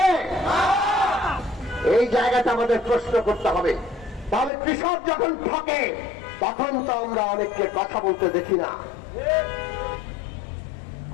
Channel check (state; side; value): drops out; right; at 4.5 s